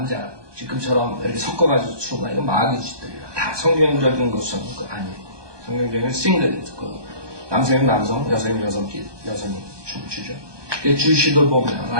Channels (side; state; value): left; late; 1.2 ms